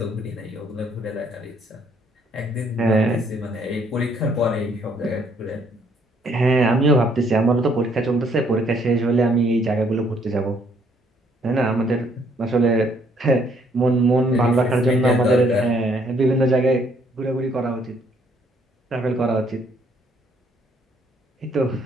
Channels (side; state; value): both; normal; correlation 0.66